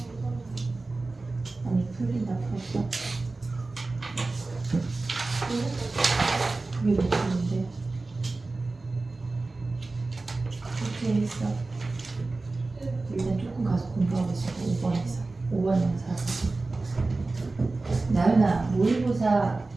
아니 풀린다 풀었어. 그게 몇 분인데? 어떻게 했어? 일단 조금 가서 공부하고 있어. 5번에서 5번 영사. 나연아 모의고사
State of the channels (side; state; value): left; quieter; 3.4 dB